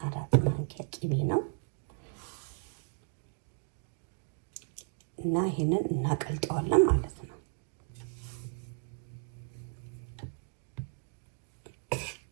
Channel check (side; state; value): left; silent; 55 dB below the other